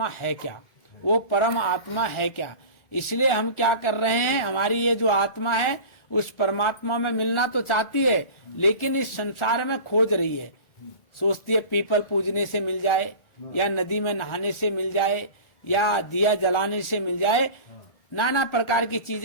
है क्या, वो परम आत्मा है क्या। इसलिए हम क्या कर रहे हैं, हमारी ये जो आत्मा है उस परमात्मा में मिलना तो चाहती है, लेकिन इस संसार में खोज रही है। सोचती है पीपल पूजने से मिल जाए, या नदी में नहाने से मिल जाए, या दिया जलाने से मिल जाए। नाना प्रकार की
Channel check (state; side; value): late; right; 1.4 ms